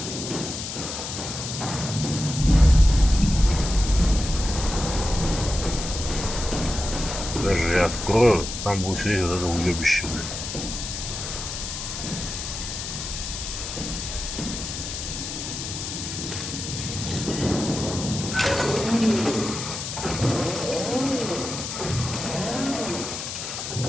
Даже я открою, там будет сидеть вот это уебище, блядь.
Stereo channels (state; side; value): noise; left; hiss, 6 dB below the sound